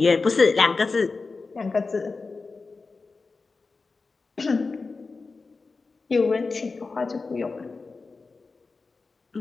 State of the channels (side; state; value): right; quieter; 4.1 dB